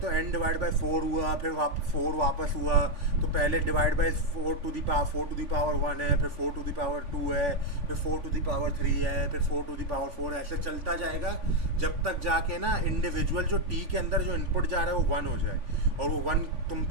हो n डिवाइड बाय 4 हुआ, फिर 4 वापस हुआ, तो पहले divide by 4 to the power 1 है, फिर 4 टू दी पावर 2 है, फिर 4 टू दी पावर 3 है, फिर 4 टू दी पावर 4, ऐसे चलता जाएगा जब तक जाके ना इंडिविजुअल जो t के अंदर जो इनपुट जा रहा है वो 1 हो जाए। और वो 1 तुम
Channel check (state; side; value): late; left; 3.5 ms